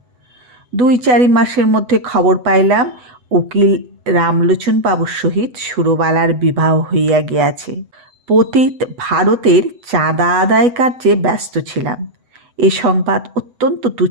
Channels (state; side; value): late; left; 8.0 ms